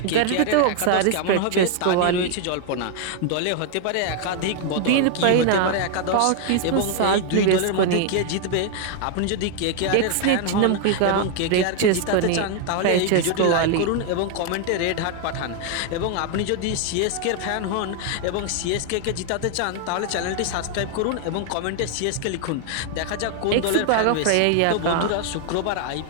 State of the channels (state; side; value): different; both; correlation 0.00